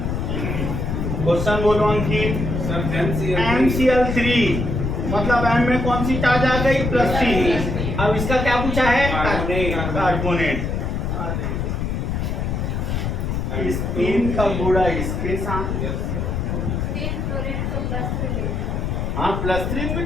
क्वेश्चन बोलो अंकित। MCl3 मतलब M में कौन सी चार्ज आ गई? +3। अब इसका क्या पूछा है? कार्बोनेट। इस 3 का गुणा इसके साथ। हाँ +3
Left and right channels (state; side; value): noise; left; rumble, 1 dB below the sound